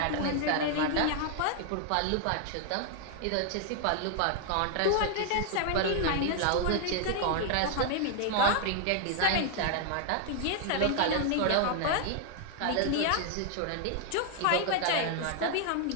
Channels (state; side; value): different; both; correlation 0.00